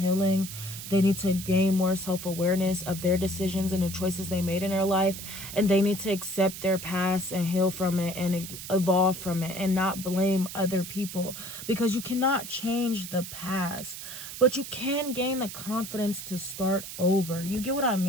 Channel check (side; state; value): right; noise; hiss, 10 dB below the sound